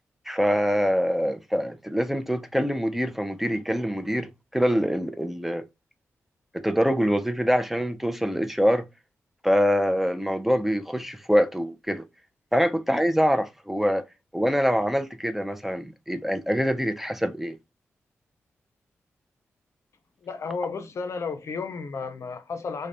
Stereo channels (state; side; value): normal; both; correlation 0.96